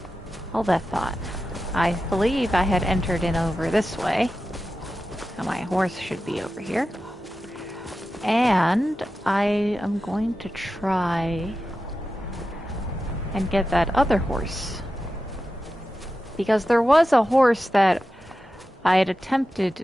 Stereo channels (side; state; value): both; normal; correlation 0.92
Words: Hold that thought. I believe I had entered in over this way. Now my horse should be over here. And I am going to try and get that other horse. Because there was a horse that I had